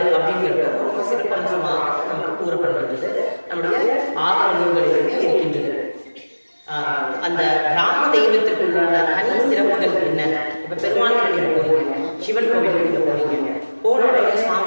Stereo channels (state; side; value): inverted; both; correlation -1.00